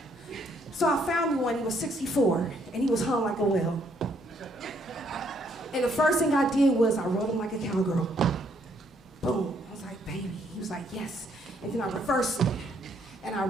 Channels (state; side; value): normal; both; correlation 0.69